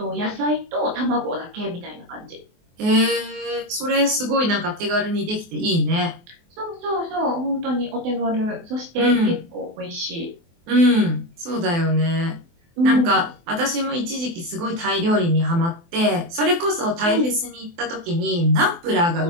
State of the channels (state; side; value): late; left; 24 ms